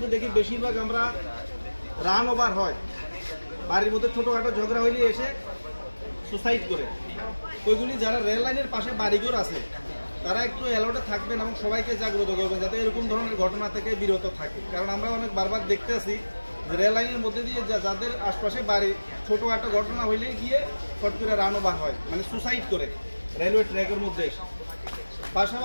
দেখি বেশিরভাগ আমরা রান ওভার হয়, বাড়ির মধ্যে ছোটোখাটো ঝগড়া হইলে এসে সুসাইড করে। ওইগুলি যারা রেল লাইনের পাশে বাড়িঘর আছে তারা একটু অ্যালার্টে থাকবেন এবং সবাইকে জাগ্রত করবেন যাতে এরকম ধরনের ঘটনা থেকে বিরত থাকে। কারণ আমরা অনেক বারবার দেখতে আসি যে রেল লাইনের মধ্যে দিয়ে যাদের আশপাশে বাড়ি ছোটোখাটো ঘটনা হইলে গিয়ে ফট করে রান ওভার হয়, মানে সুসাইড করে রেলওয়ে ট্র্যাকের মধ্যে।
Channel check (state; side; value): inverted; both; correlation -1.00